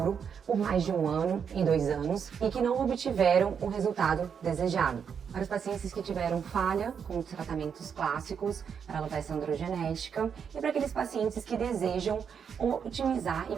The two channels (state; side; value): quieter; left; 7.1 dB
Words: por mais de 1 ano e 2 anos e que não obtiveram o resultado desejado. Para os pacientes que tiveram falha com os tratamentos clássicos para alopecia androgenética e para aqueles pacientes que desejam otimizar e